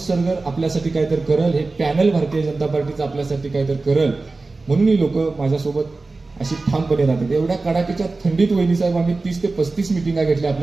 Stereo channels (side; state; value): left; quieter; 3.5 dB